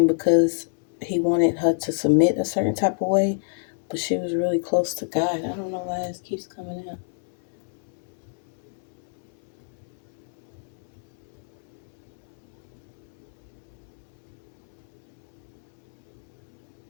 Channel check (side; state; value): right; silent; 55 dB below the other